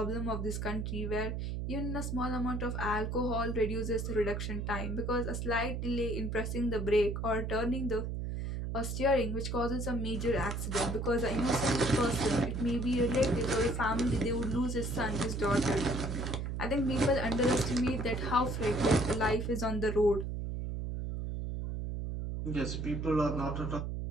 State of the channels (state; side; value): noise; right; hum, 3 dB below the sound